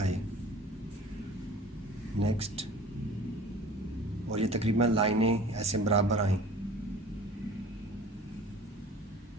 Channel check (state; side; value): normal; both; correlation 0.44